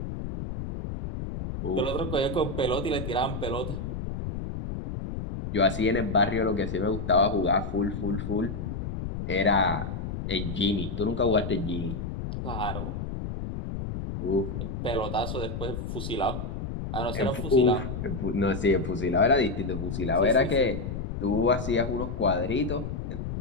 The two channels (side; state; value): left; noise; rumble, 5 dB below the sound